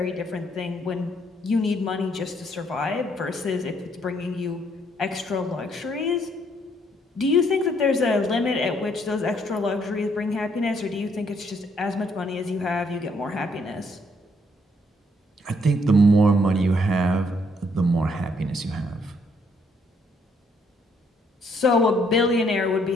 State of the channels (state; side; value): normal; both; correlation 0.69